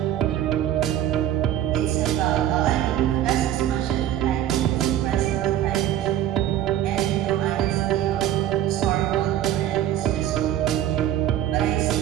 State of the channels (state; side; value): quieter; left; 11.6 dB